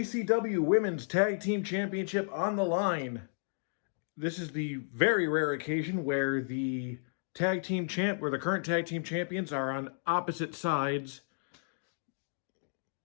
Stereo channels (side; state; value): right; silent; digital silence